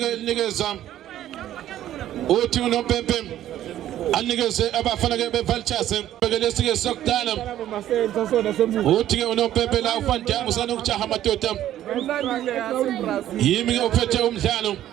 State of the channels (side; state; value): left; quieter; 12.4 dB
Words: linikeza uthi unompempe anikeze abafana ke beVultures bekelesike sokudala uthi ke unompempe la uFandam usana ukujaha madoda yimi ke uphethe umdlalo